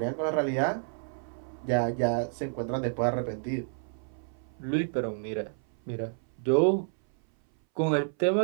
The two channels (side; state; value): left; silent; 58 dB below the other